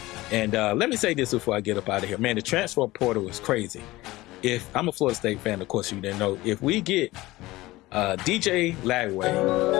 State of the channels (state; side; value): quieter; right; 18.8 dB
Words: and let me say this before I get up out of here, man. The transfer portal is crazy. If I'm a Florida State fan, of course you didn't know. If we get DJ Lagway,